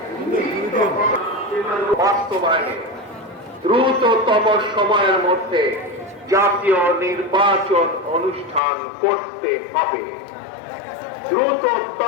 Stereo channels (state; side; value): drops out; right; at 8.6 s